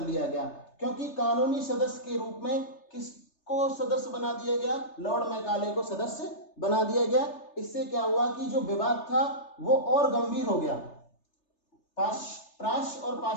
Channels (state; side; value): late; right; 3.3 ms